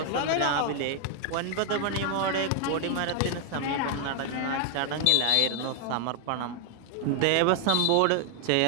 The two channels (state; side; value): different; both; correlation 0.00